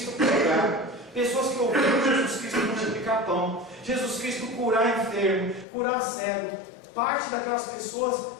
pregar, pessoas que ouviram Jesus Cristo multiplicar pão, Jesus Cristo curar enfermo, curar cego. Parte daquelas pessoas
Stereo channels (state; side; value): drops out; right; at 5.7 s